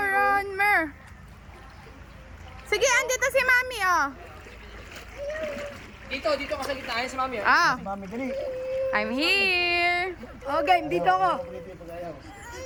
Ronmer! Sige, andito si Mami, oh. Dito ka sa gitna. Ayan si Mami. Ah, Mami, dali. I'm here. Oh, game, dito ako.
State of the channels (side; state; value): both; identical; correlation 1.00